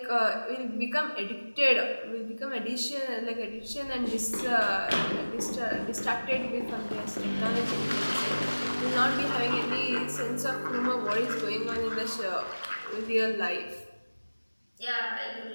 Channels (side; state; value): both; inverted; correlation -1.00